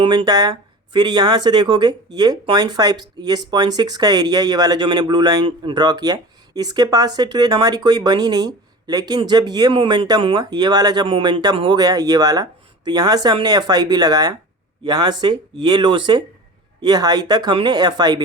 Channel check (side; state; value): both; normal; correlation 0.36